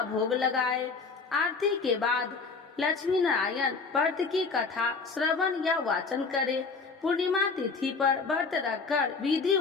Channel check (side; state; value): right; quieter; 4.6 dB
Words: भोग लगाए। आरती के बाद लक्ष्मी नारायण व्रत की कथा श्रवण या वाचन करे। पूर्णिमा तिथि पर व्रत रखकर